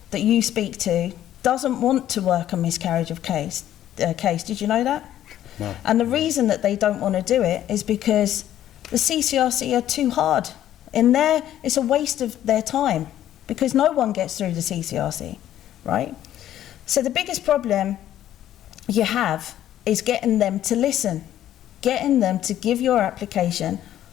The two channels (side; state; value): right; quieter; 12.0 dB